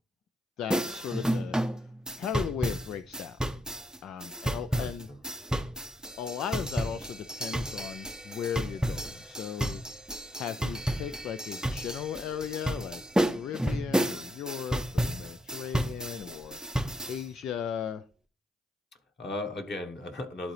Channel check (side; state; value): both; normal; correlation 0.78